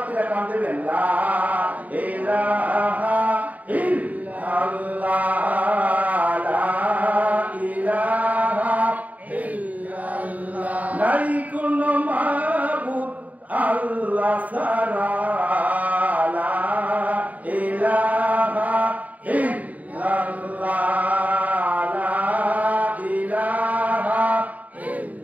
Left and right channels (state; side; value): late; left; 0.073 ms